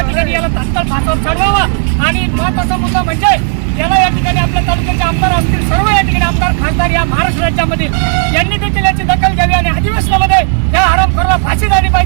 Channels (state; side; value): silent; left; 57 dB below the other